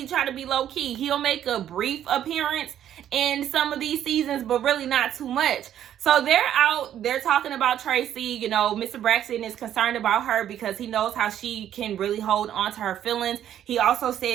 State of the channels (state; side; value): quieter; left; 10.8 dB